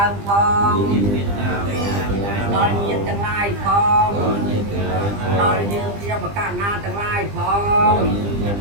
ើមផងដល់ញាតិទាំងឡាយផងដល់យើងជាបកណាទាំងឡាយផង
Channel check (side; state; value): left; late; 20 ms